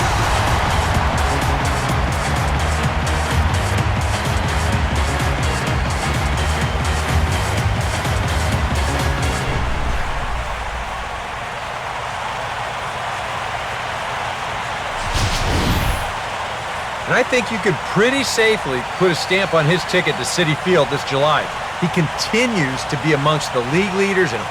And I think you could pretty safely put a stamp on his ticket to Citi Field this July. He continues to be amongst the league leaders in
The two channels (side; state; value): both; identical; correlation 1.00